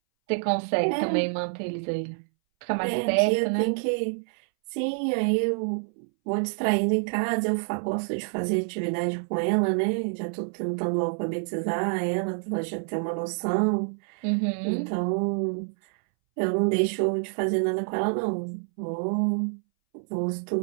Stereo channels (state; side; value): silent; left; 60 dB below the other